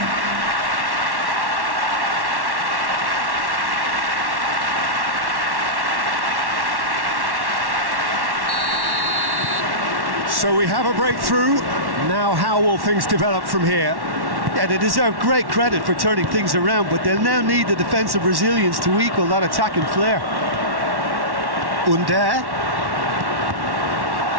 So we have a breakthrough. Now how will things develop from here? Yeah, they deserve great credit for turning things around, but they'll now need the defensive resilience to equal that attacking flair. Under.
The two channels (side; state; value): left; late; 1.1 ms